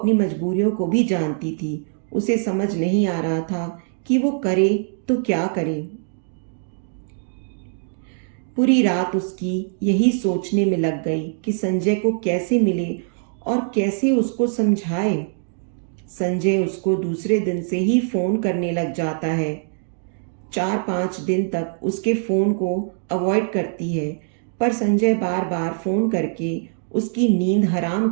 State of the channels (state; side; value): silent; left; digital silence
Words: मजबूरियों को भी जानती थी। उसे समझ नहीं आ रहा था कि वो करे तो क्या करे। पूरी रात उसकी यही सोचने में लग गई कि संजय को कैसे मिले और कैसे उसको समझाए। संजय उसको दूसरे दिन से ही फ़ोन करने लग जाता है। 4-5 दिन तक उसके फ़ोन को अवॉइड करती है, पर संजय बार बार फ़ोन करके उसकी नींद हराम